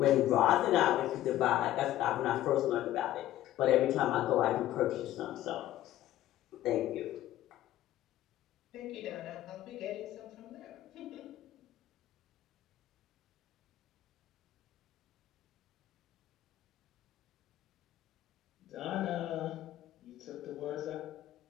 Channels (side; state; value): right; quieter; 13.8 dB